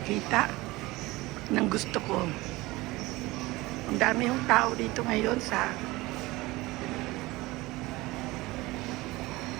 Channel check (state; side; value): quieter; left; 20.5 dB